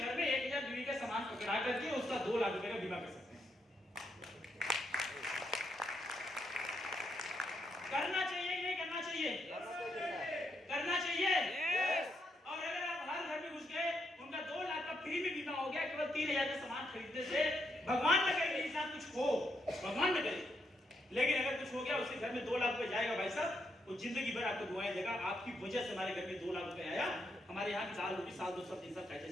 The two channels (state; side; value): normal; both; correlation 0.79